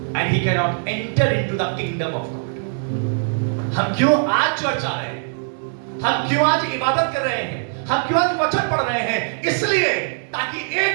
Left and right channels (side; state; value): left; silent; 63 dB below the other